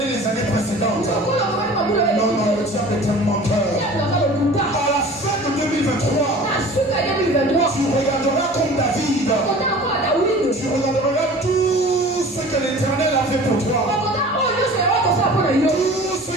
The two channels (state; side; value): normal; both; correlation 0.42